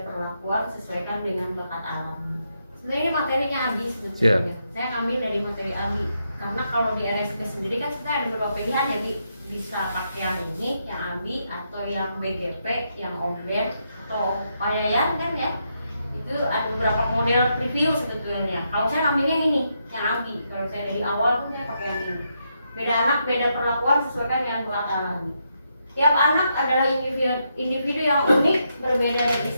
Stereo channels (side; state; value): both; inverted; correlation -0.81